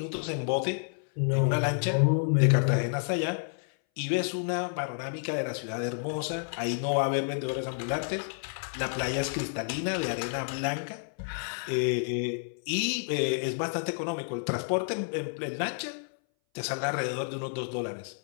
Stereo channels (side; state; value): right; silent; 58 dB below the other